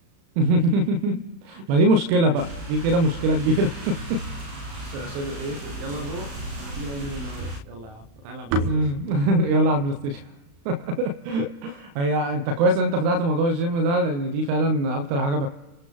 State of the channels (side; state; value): left; late; 35 ms